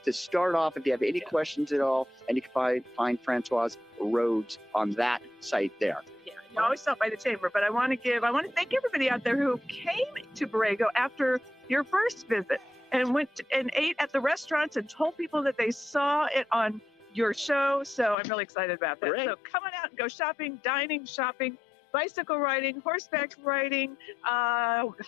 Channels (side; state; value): right; drops out; at 18.2 s